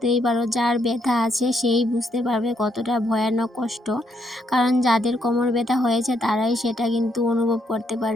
পারো, যার ব্যথা আছে সেই বুঝতে পারবে কতটা ভয়ানক কষ্ট। কারণ যাদের কোমর ব্যথা হয়েছে তারাই সেটা কিন্তু অনুভব করতে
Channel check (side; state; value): both; normal; correlation 0.75